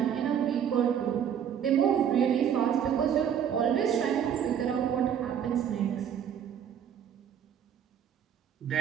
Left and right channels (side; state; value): left; quieter; 8.8 dB